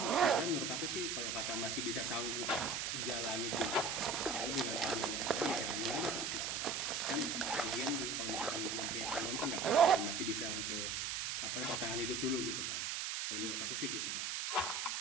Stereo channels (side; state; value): right; noise; hiss, 1 dB below the sound